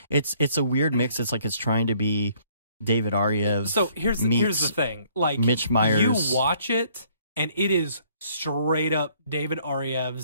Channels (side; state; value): both; inverted; correlation -0.62